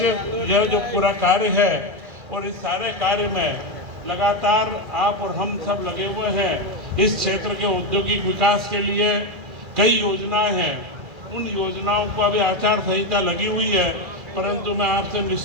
यह जो पूरा कार्य है, और इस सारे कार्य में लगातार आप और हम सब लगे हुए हैं। इस क्षेत्र के औद्योगिक विकास के लिए कई योजनाएं हैं, उन योजनाओं को अभी आचार संहिता लगी हुई है, परंतु मैं आपसे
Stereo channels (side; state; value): left; late; 1.9 ms